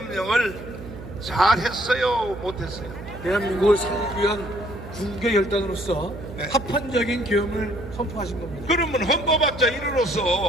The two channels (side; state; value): right; noise; hum, 13 dB below the sound